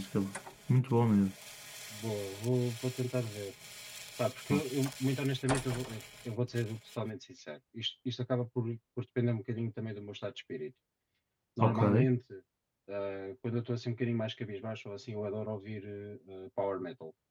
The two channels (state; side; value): identical; both; correlation 1.00